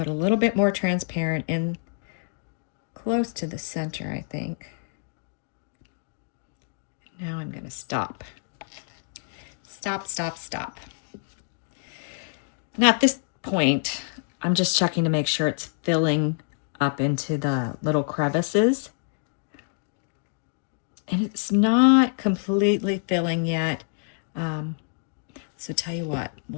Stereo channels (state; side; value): silent; right; 60 dB below the other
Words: a little bit more transparent in close to the center, I think. Now I'm going to stop. Stop, stop, stop. Now at this point, I'm just checking to make sure it's filling up into the little crevices. And it's not completely filling yet. So tell you what,